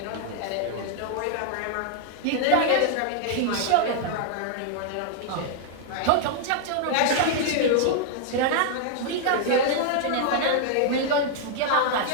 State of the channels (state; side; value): different; both; correlation -0.01